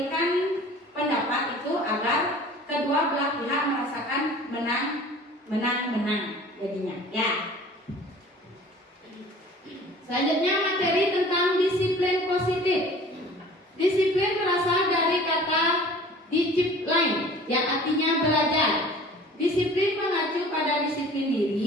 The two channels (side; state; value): both; normal; correlation 0.46